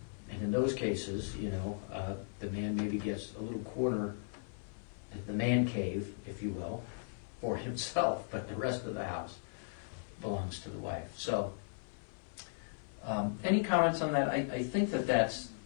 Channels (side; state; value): right; silent; 53 dB below the other